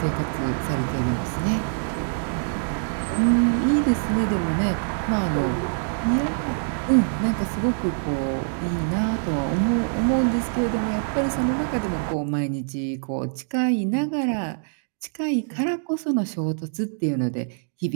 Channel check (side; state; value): left; silent; digital silence